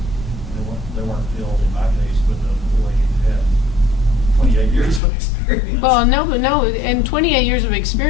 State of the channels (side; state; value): right; drops out; at 5.0 s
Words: They weren't filled in my case with the way you had 28 years of experience. Well, no, in 28 years of